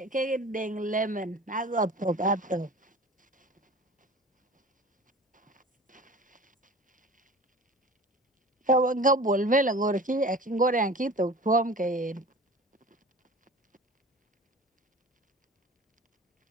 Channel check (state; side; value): normal; both; correlation 0.40